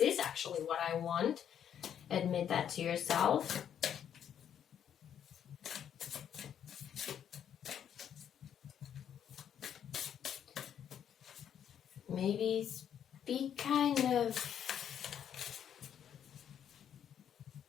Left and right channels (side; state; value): right; quieter; 9.1 dB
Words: actually what I want. Admit that to yourself. Maybe be kind of